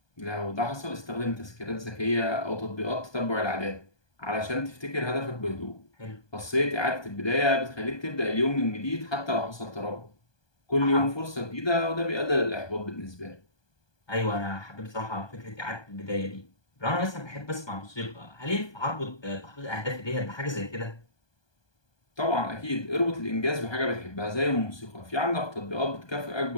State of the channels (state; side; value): late; right; 1.2 ms